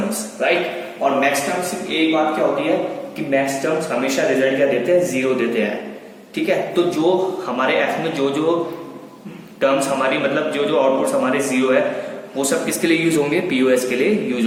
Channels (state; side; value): identical; both; correlation 1.00